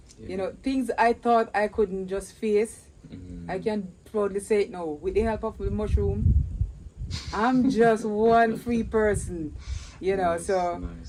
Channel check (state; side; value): identical; both; correlation 1.00